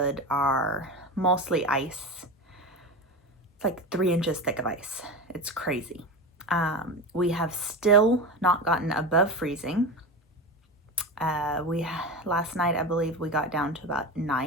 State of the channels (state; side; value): normal; both; correlation 0.24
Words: are mostly ice. It's like 3 inches thick of ice. It's crazy. We have still not gotten above freezing. Last night, I believe we got down to about